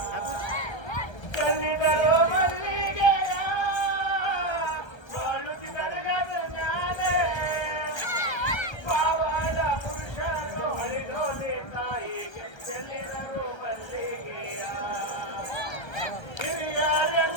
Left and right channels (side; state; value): right; late; 1.3 ms